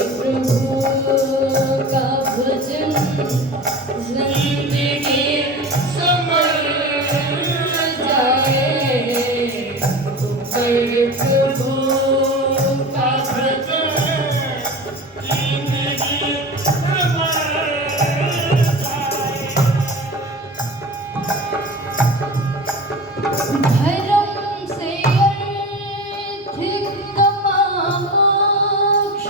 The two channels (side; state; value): both; normal; correlation 0.32